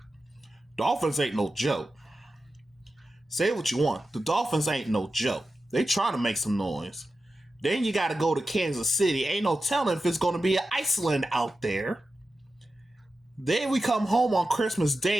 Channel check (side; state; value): both; normal; correlation 0.92